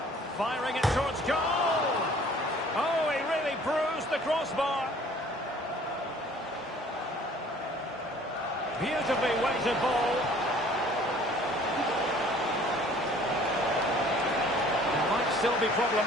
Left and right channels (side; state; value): both; normal; correlation 0.53